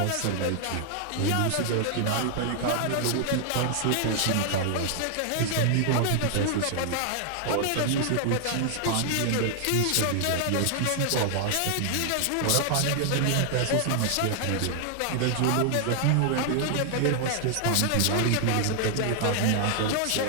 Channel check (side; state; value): both; different; correlation 0.00